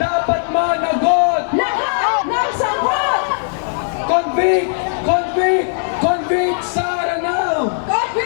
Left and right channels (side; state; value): right; silent; 64 dB below the other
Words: dapat managot. Lahat ng sagot! Convict, convict, convict Sara now.